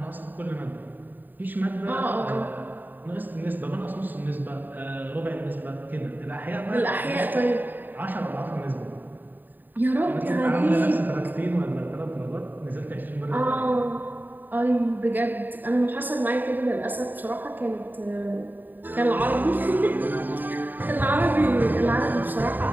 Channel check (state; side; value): late; left; 0.089 ms